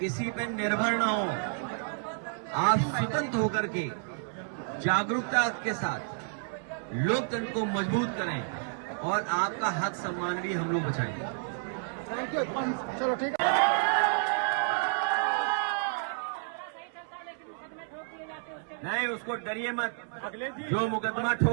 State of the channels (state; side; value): silent; left; 57 dB below the other